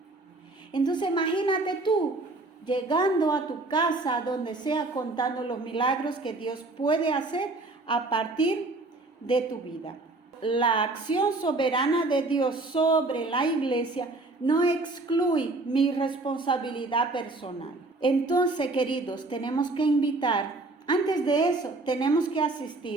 Entonces imagínate tú llegando a tu casa, donde sea, contando los milagros que Dios puede hacer a partir de tu vida. La acción soberana de Dios sobre la iglesia no excluye mi responsabilidad personal. Entonces, queridos, tenemos que invitar. Antes de eso, tenemos que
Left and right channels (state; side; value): quieter; left; 3.1 dB